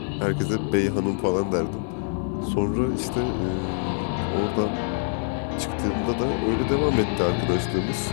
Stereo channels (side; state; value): right; silent; 62 dB below the other